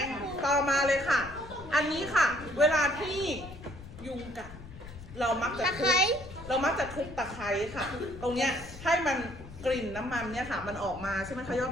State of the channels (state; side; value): noise; left; rumble, 15 dB below the sound